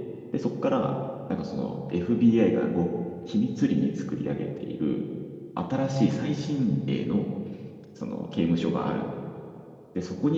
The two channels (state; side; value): identical; both; correlation 1.00